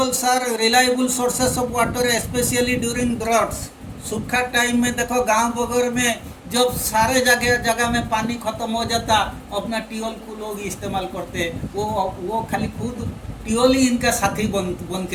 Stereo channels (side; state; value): both; identical; correlation 1.00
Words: are reliable sources of water especially during droughts. सूखा टाइम में देखो गांव वगैरह में जब सारे जगह में पानी खत्म हो जाता, अपना ट्यूबवेल को लोग इस्तेमाल करते, वो खाली खुद ट्यूबवेल ही इनका साथी बन